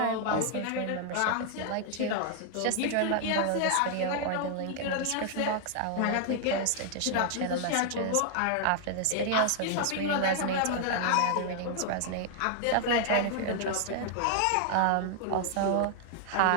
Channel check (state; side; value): different; both; correlation 0.00